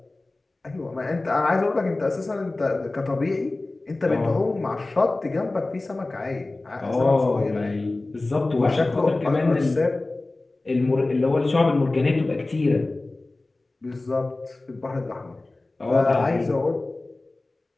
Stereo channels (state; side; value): quieter; right; 3.0 dB